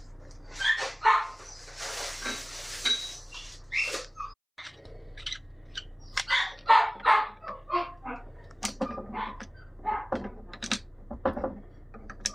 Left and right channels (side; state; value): both; identical; correlation 1.00